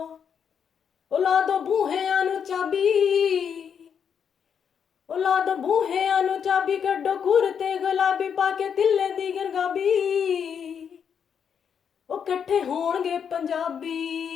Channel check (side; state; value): right; quieter; 7.5 dB